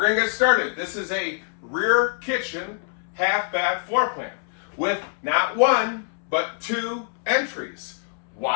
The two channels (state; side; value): silent; right; 62 dB below the other